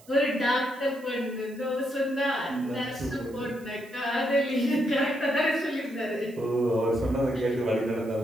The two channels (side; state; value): right; noise; hiss, 25 dB below the sound